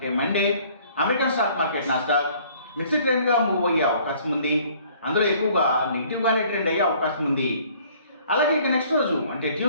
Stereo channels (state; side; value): inverted; both; correlation -0.57